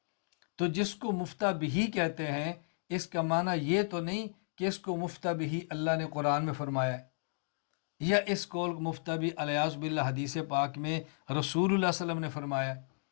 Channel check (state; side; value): silent; right; digital silence